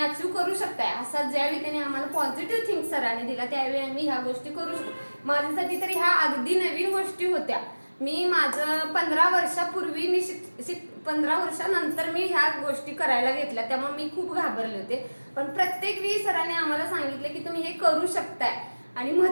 करू शकताय, असा ज्यावेळी त्यांनी आम्हाला पॉझिटिव्ह थिंक सरांनी दिला त्यावेळी आम्ही ह्या गोष्टी करू शकतो. माझ्यासाठी तरी ह्या अगदी नवीन गोष्टी होत्या. मी माझं 15 वर्षापूर्वी मी 15 वर्षानंतर मी ह्या गोष्टी करायला घेतल्या, त्यामुळे मी खूप घाबरले होते. पण प्रत्येक वेळी सरांनी आम्हाला सांगितलं की तुम्ही हे करू शकताय. आणि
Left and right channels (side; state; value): both; inverted; correlation -1.00